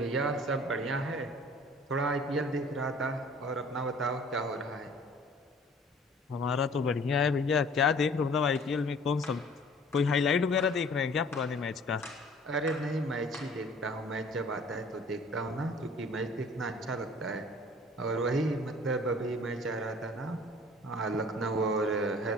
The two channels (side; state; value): both; normal; correlation 0.51